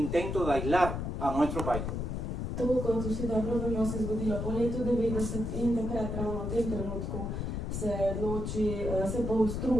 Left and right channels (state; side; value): noise; left; rumble, 3 dB below the sound